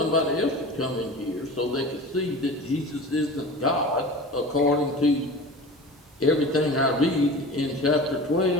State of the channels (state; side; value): normal; both; correlation 0.36